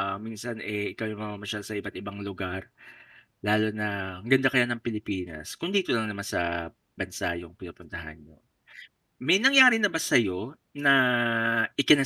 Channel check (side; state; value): both; identical; correlation 1.00